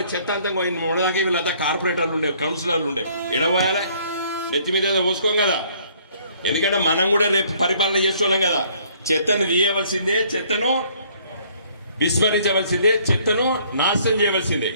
చెత్త అంతా మొన్నదాకా వీళ్ళంతా కార్పొరేటర్లు ఉండే, కౌన్సిలర్లు ఉండే, ఎడబోయాలి, నెత్తి మీద పోసుకోం కదా. ఎందుకంటే మనం కూడా రేపు పరిపాలన చేస్తున్నాం కదా. చెత్తను తీయవలసిందే, చెత్తను విస్మరించవలసిందే, చెత్తను నాశనం చేయవలసిందే.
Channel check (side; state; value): both; inverted; correlation -0.61